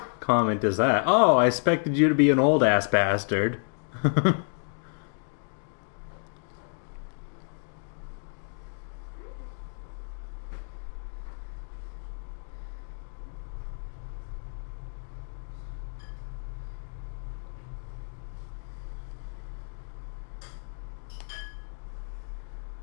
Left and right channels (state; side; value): silent; right; 58 dB below the other